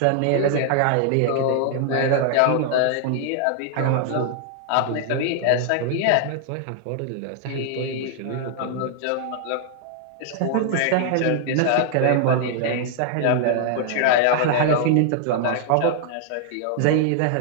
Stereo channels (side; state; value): both; different; correlation 0.00